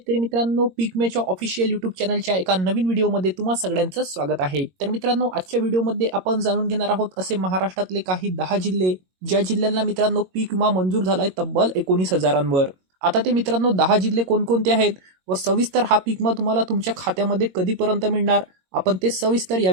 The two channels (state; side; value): late; left; 22 ms